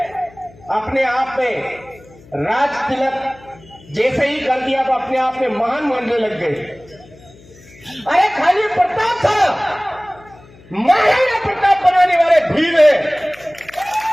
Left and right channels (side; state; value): left; noise; hum, 24 dB below the sound